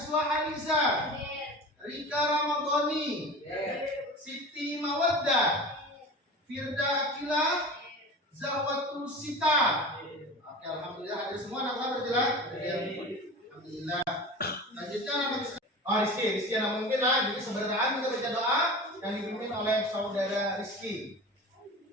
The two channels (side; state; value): both; normal; correlation 0.34